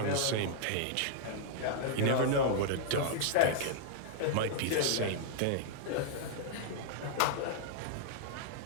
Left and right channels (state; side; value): different; both; correlation -0.01